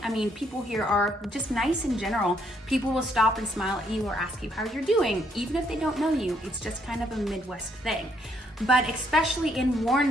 I mean, people here are just nice in general. People will stop and smile at you or ask you how you're doing, even if they don't know you. It's just kind of a Midwest thing. But especially in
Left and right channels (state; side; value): normal; both; correlation 0.71